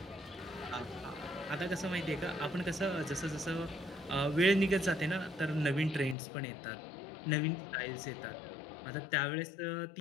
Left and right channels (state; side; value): drops out; right; at 6.2 s